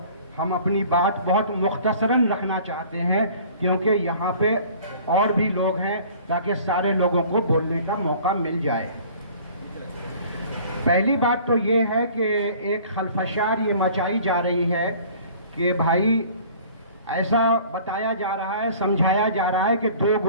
हम अपनी बात बहुत मुख्तसरन रखना चाहते हैं क्योंकि यहाँ पे और भी लोग हैं, ताकि सारे लोगों को बोलने का मौका मिल जाए। पहली बात तो ये है कि एक खलफशार ये मचाई जा रही है कि भाई ऐसा बताया जा रहा है, समझाया जा रहा है कि दो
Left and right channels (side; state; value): both; inverted; correlation -0.49